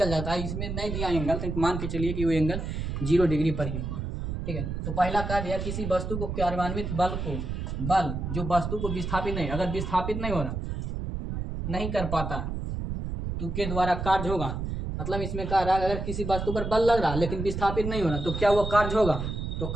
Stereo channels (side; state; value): right; noise; rumble, 4 dB below the sound